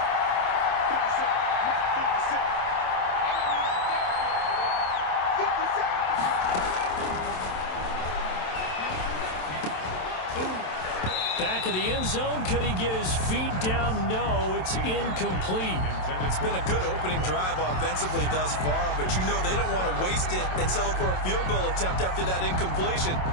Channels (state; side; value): late; right; 27 ms